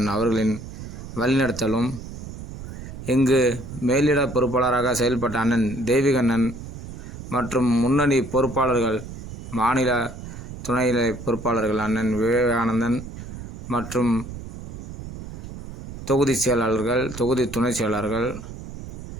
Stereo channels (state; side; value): noise; right; rumble, 11 dB below the sound